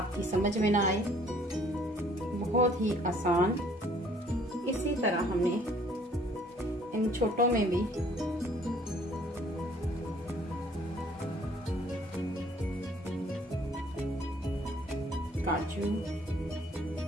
समझ में ना आए, बहुत ही आसान। इसी तरह हमने इन छोटों में भी काजू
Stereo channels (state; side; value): normal; both; correlation 0.59